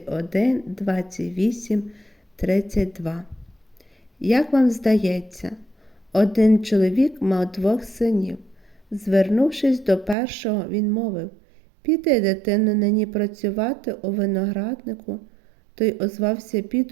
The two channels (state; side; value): drops out; left; at 10.2 s